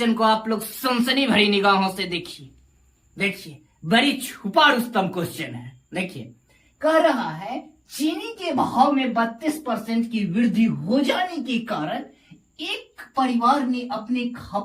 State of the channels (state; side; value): identical; both; correlation 1.00